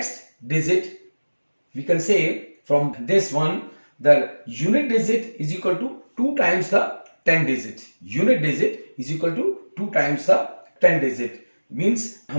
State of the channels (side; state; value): both; inverted; correlation -1.00